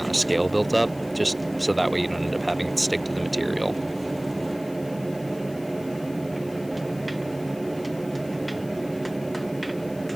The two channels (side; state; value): left; noise; hiss, 22 dB below the sound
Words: of scale built up, just so that way you don't end up having it stick to the material.